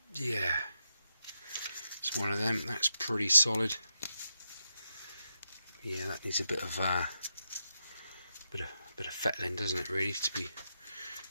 yeah, it's one of them. That's pretty solid. Yeah, that needs a bit of fettling, doesn't it? Really, to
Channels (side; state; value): both; inverted; correlation -0.85